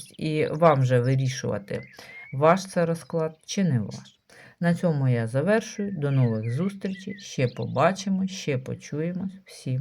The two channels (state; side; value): identical; both; correlation 1.00